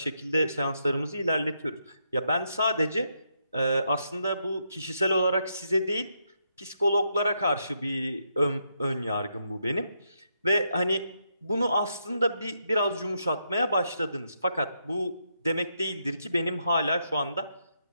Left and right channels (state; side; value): inverted; both; correlation -0.80